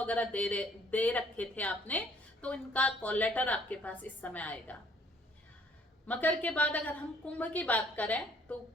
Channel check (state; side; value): normal; both; correlation 0.61